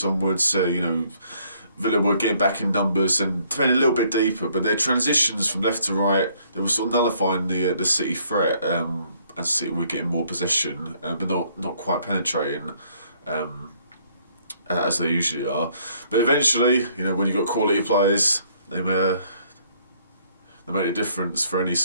onwards, Villa were getting back in numbers and defending a little bit deeper, but their transitions from left to right, they were sort of nullifying the City threat, as City were getting more possession, but not quite penetrating as they usually are. But eventually, when you've got quality players, they made a difference for any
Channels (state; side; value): inverted; both; correlation -0.65